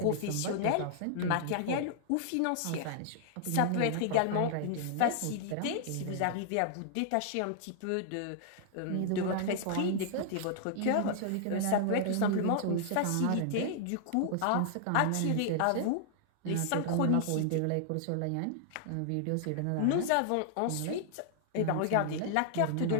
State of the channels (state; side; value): different; both; correlation -0.01